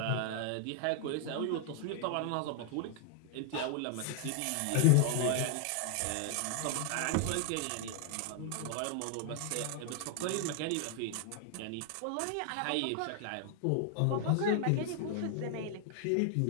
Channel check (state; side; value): different; both; correlation 0.00